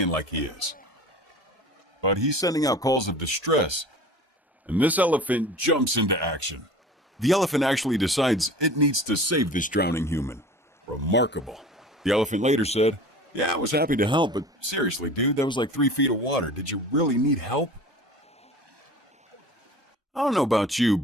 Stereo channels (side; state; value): both; normal; correlation 0.40